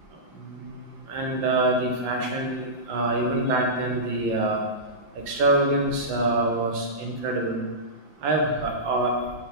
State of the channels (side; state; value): left; late; 5.8 ms